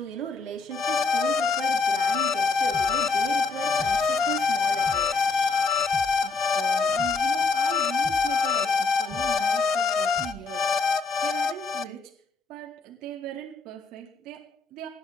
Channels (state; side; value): quieter; right; 4.3 dB